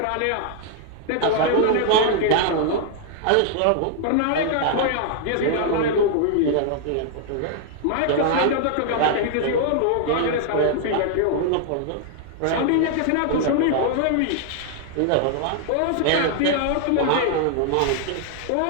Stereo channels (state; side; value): different; both; correlation -0.01